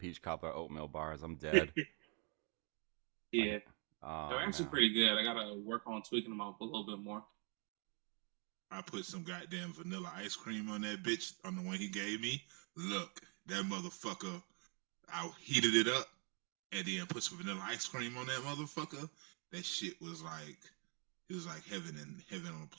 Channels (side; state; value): left; quieter; 36.2 dB